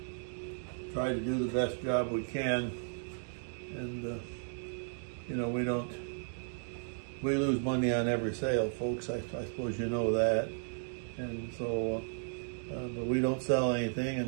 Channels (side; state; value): left; silent; digital silence